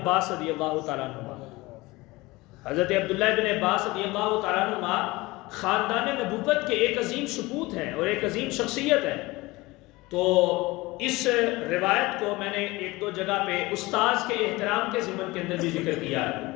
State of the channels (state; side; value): quieter; right; 21.4 dB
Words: رضی اللہ تعالیٰ عنہ. حضرت عبداللہ ابن عباس رضی اللہ تعالیٰ عنہ خاندان نبوت کے ایک عظیم سپوت ہیں اور ایک عظیم شخصیت ہے. تو اس روایت کو میں نے ایک دو جگہ پہ استاذ کے احترام کے ضمن کے اندر بھی ذکر کیا ہے،